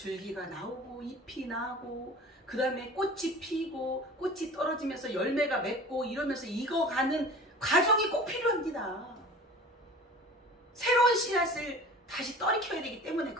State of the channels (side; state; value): both; normal; correlation 0.40